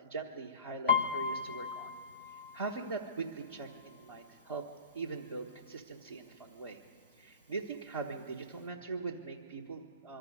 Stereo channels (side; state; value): both; inverted; correlation -0.38